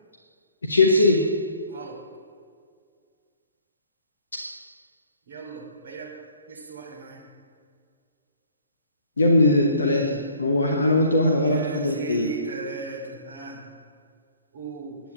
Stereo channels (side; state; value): both; inverted; correlation -0.59